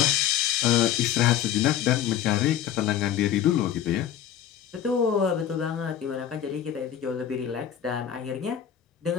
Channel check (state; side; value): quieter; right; 10.0 dB